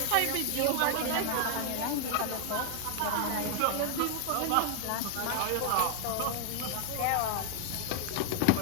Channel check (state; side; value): different; both; correlation 0.00